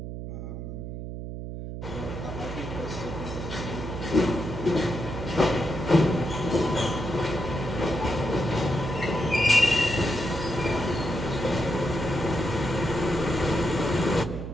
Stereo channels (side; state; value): right; noise; hum, 7 dB below the sound